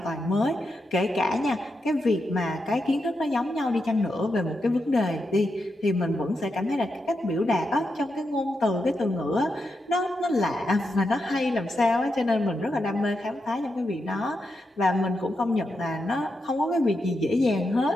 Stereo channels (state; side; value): normal; both; correlation 0.85